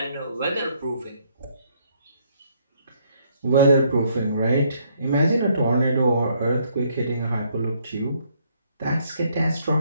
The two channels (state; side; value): inverted; both; correlation -0.68